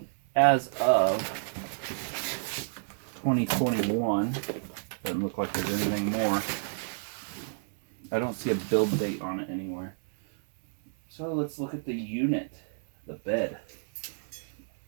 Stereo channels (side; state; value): left; silent; digital silence